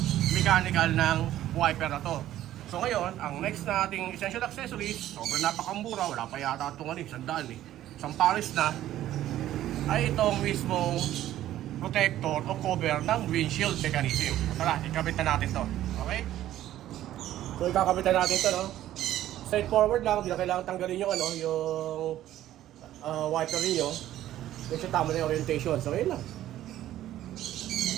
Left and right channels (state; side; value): quieter; left; 13.2 dB